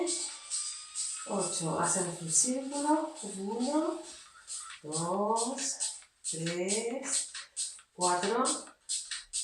8. Hacemos un círculo. 1, 2, 3, 4,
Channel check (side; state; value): both; identical; correlation 1.00